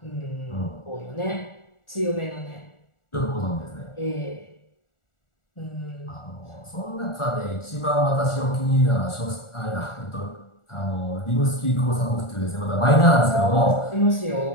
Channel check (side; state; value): right; late; 1.4 ms